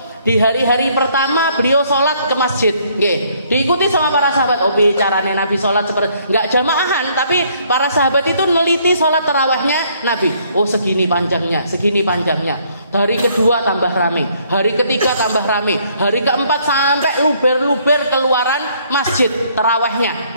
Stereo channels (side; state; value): both; inverted; correlation -0.65